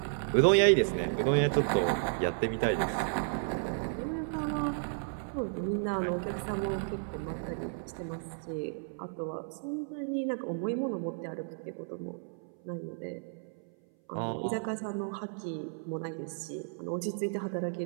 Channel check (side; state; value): left; silent; 56 dB below the other